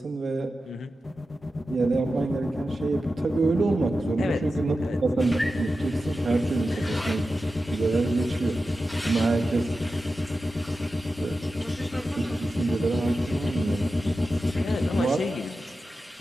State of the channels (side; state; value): both; normal; correlation 0.92